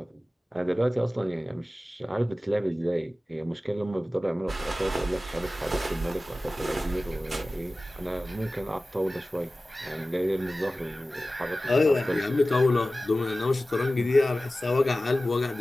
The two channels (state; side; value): normal; both; correlation 0.96